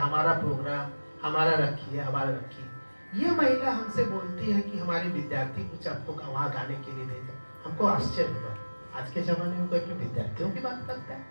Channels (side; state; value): both; inverted; correlation -1.00